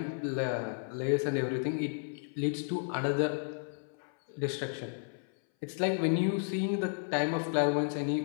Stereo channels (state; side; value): silent; right; 56 dB below the other